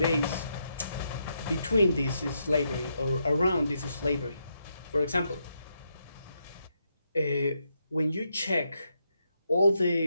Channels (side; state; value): both; inverted; correlation -0.81